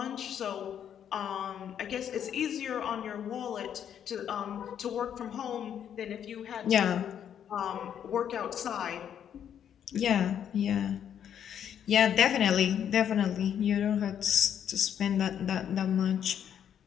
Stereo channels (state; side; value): quieter; right; 9.1 dB